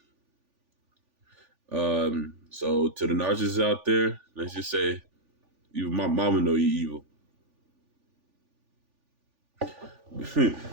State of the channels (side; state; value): left; late; 3.4 ms